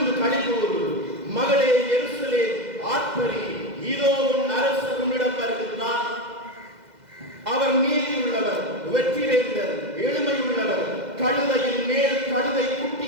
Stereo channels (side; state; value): left; late; 2.0 ms